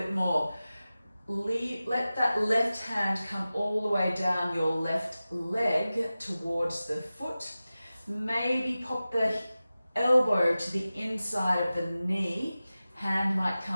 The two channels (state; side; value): inverted; both; correlation -0.96